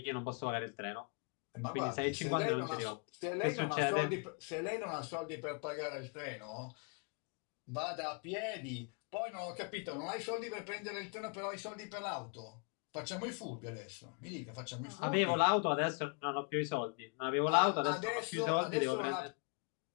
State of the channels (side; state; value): right; quieter; 35.4 dB